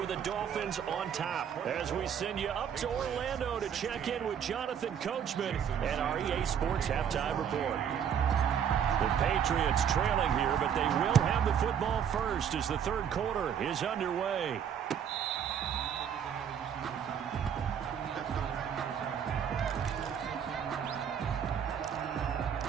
the Dolphins on top. As we send you up to Orlando to check in with Jonathan Coachman and our EA Sports Halftime Report. The Patriots trailing here, but they will have the football first as the third quarter is underway.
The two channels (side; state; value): left; quieter; 8.3 dB